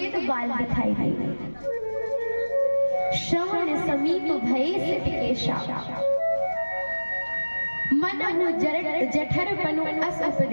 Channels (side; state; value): both; inverted; correlation -1.00